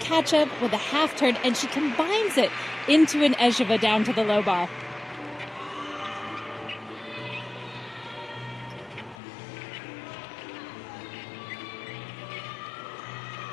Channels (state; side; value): drops out; right; at 9.2 s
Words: with a half turn, and she combines it into an Ejeva down to the low bar.